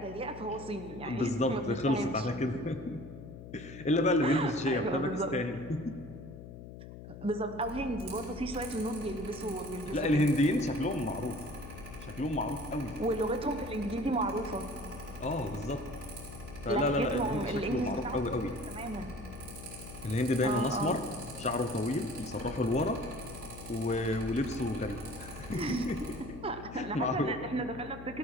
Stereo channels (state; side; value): noise; left; hum, 13 dB below the sound